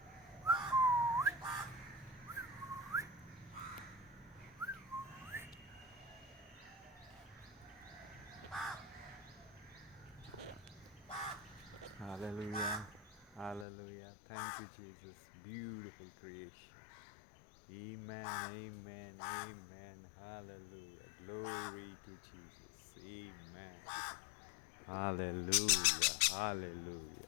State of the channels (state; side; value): drops out; right; at 13.7 s